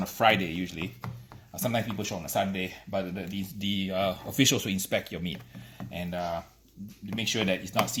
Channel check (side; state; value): both; identical; correlation 1.00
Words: a Friday usually, sometimes people show on a Sunday, but the officials will inspect your meat and make sure that it's not